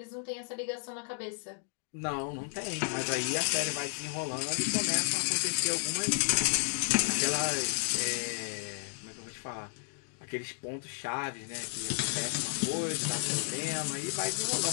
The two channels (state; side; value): silent; right; digital silence